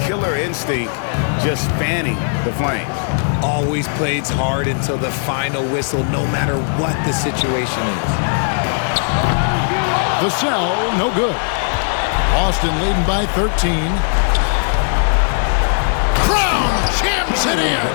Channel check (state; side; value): silent; right; 68 dB below the other